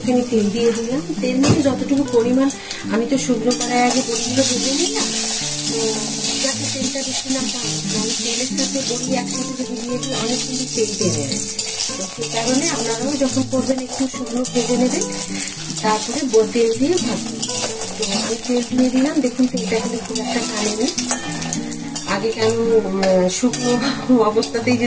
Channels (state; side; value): identical; both; correlation 1.00